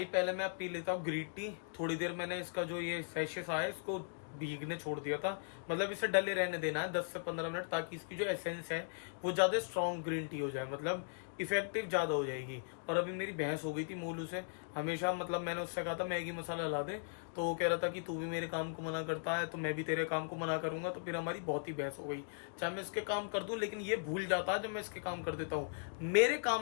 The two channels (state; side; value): silent; right; digital silence